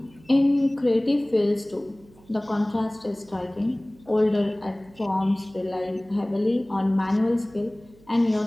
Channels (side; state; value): right; noise; hum, 26 dB below the sound